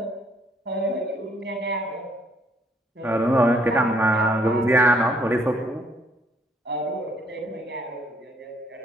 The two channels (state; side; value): normal; both; correlation 0.66